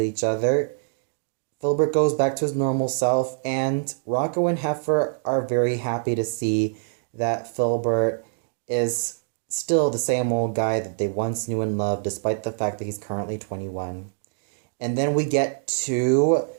each other, Filbert goes back to his normal self, and Rocko and Heifer are very happy to see that Filbert is still the same old guy that they once knew and loved, despite the fact that he's currently 21. And then we get to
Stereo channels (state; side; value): silent; left; digital silence